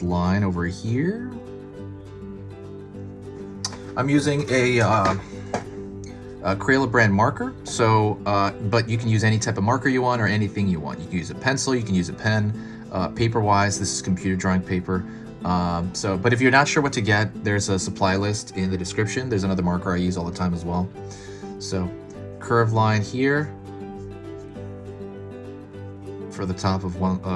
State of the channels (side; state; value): both; identical; correlation 1.00